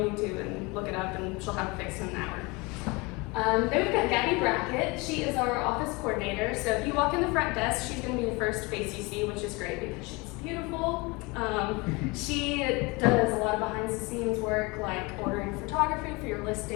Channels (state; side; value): quieter; right; 26.0 dB